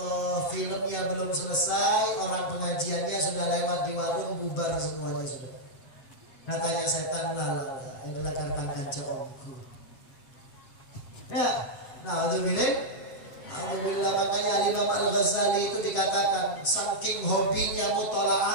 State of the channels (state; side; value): late; right; 8.1 ms